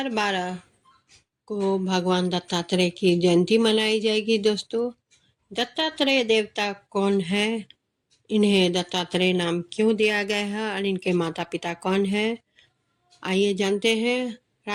को भगवान दत्तात्रेय की जयंती मनाई जाएगी। दोस्तों, दत्तात्रेय देवता कौन है, इन्हें दत्तात्रेय नाम क्यों दिया गया है और इनके माता पिता कौन है, आइए जानते हैं।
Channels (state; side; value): identical; both; correlation 1.00